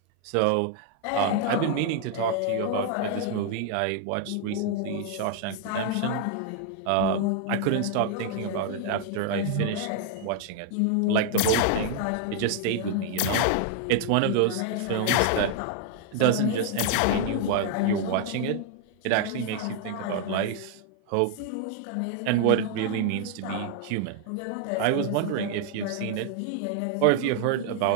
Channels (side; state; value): both; different; correlation 0.00